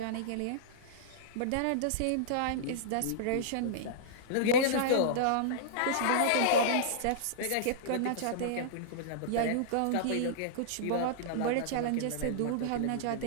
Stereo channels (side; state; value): both; different; correlation -0.02